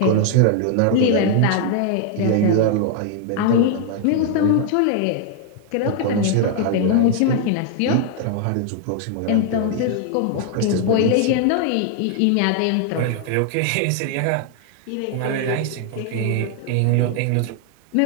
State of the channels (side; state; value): both; different; correlation 0.00